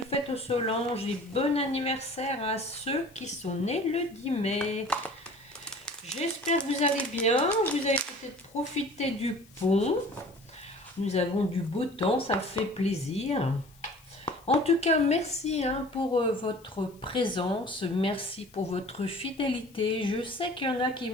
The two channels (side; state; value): left; noise; hiss, 28 dB below the sound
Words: fête aux Solanges et bon anniversaire à ceux qui sont nés le 10 mai. J'espère que vous allez bien, vous avez peut-être profité du pont, nous avons du beau temps, ça fait plaisir. En tout cas, merci hein, pour votre présence, merci pour votre fidélité. Je sais qu'il y en a qui